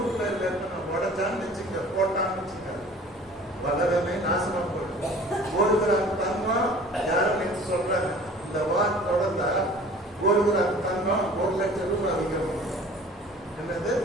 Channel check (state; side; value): normal; both; correlation 0.47